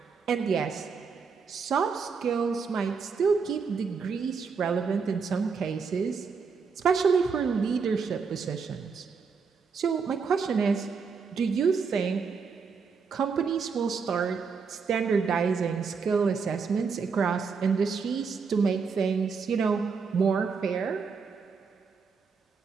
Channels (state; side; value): quieter; left; 5.5 dB